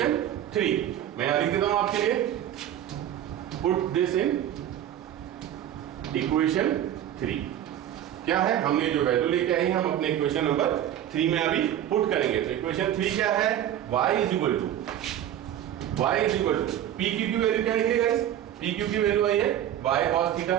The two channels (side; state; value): left; quieter; 11.3 dB